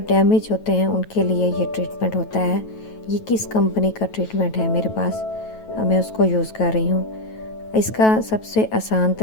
डैमेज होते हैं उनके लिए ये ट्रीटमेंट होता है। ये किस कंपनी का ट्रीटमेंट है मेरे पास, मैं उसको यूज़ कर रही हूँ। इसका सबसे आसान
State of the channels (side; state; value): right; late; 9.2 ms